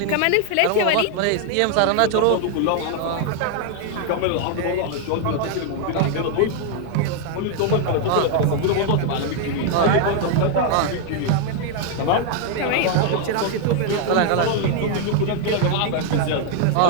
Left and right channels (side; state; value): both; different; correlation 0.00